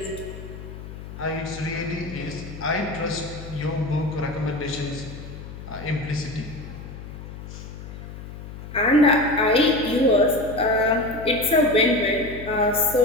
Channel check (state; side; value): noise; left; hum, 12 dB below the sound